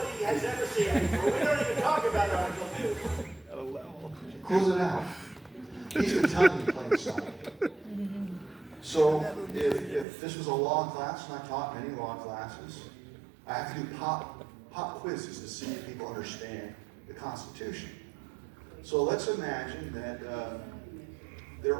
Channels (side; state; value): left; drops out; at 10.1 s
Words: has ever seen before. We don't even talk about Article 2. At a level. Close it out. He's been telling you plain sight. So if this was a law class, and I taught many law classes, I have to do pop quizzes to see if people understand the Constitution. So let's imagine that